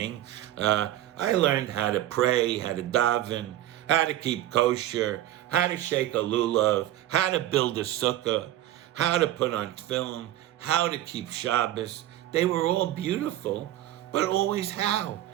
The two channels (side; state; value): left; quieter; 13.4 dB